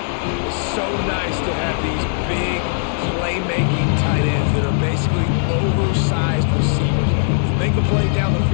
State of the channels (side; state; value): right; silent; digital silence